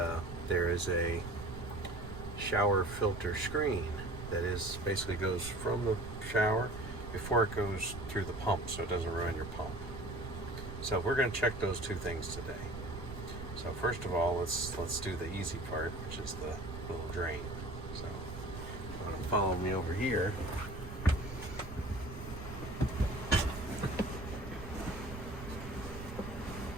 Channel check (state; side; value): noise; right; rumble, 10 dB below the sound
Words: there is a shower filter screen that is basically goes from the shower before it goes through the pump, so it doesn't ruin your pump. So we're going to check those two things today. So first of all, let's do the easy part, which is the little drain. So you want to follow me over here.